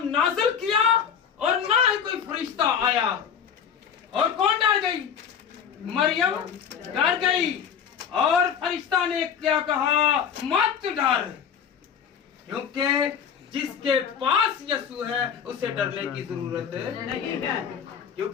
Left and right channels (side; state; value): right; quieter; 7.7 dB